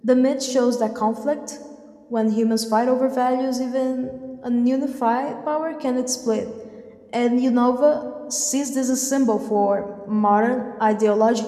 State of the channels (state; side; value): identical; both; correlation 1.00